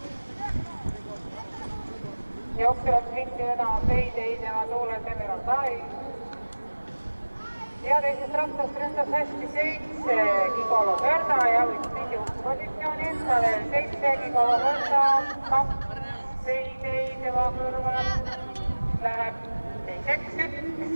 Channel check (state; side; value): inverted; both; correlation -1.00